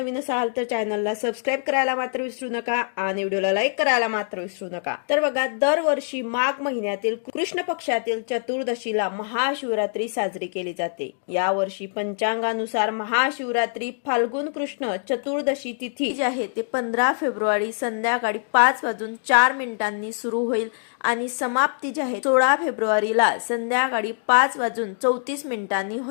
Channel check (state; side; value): silent; right; digital silence